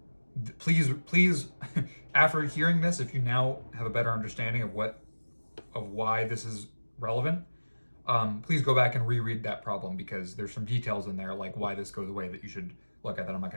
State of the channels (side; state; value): both; inverted; correlation -1.00